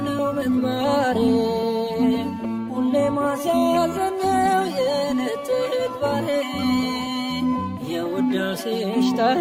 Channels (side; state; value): both; identical; correlation 1.00